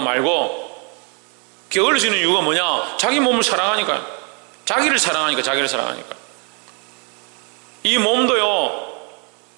말고. 게을러지는 이유가 뭐냐? 자기 몸을 사랑하니까요. 자기를 사랑하니까. 이 몸도요,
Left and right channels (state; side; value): quieter; left; 36.1 dB